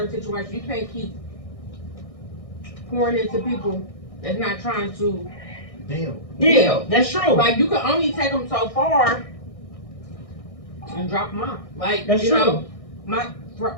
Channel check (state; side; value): late; right; 1.6 ms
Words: situation, you can't keep pouring into people that's not trying to deal. Yeah, that's true. Like, you can only take them so far and drop them off. Like, that's true. Know, my